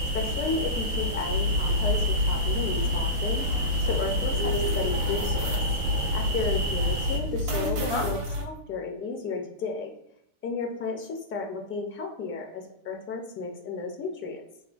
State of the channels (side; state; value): left; late; 4.5 ms